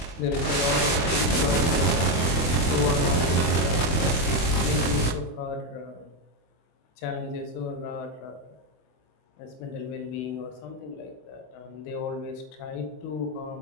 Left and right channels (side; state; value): right; late; 24 ms